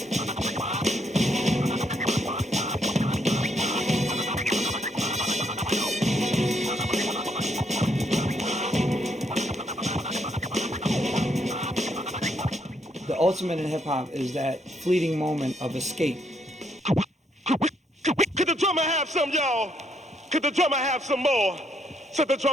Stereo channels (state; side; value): normal; both; correlation 0.73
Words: The ultimate in hip-hop is that fleeting moment of escape. Could the drummer have some, y'all? Could the drummer have some more? Said the